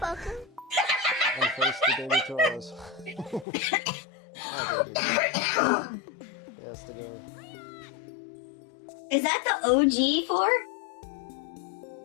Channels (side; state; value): right; drops out; at 3.5 s